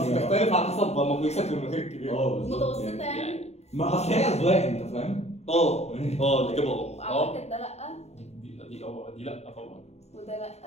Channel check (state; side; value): late; right; 0.31 ms